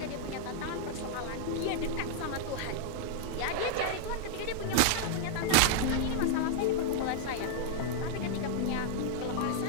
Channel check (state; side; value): different; both; correlation -0.01